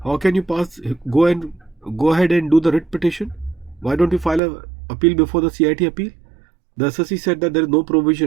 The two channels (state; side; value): drops out; left; at 4.4 s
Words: how can you go ahead and do the writ petition? Why don't you file a appeal before the CIT appeal? The SSE said that there is no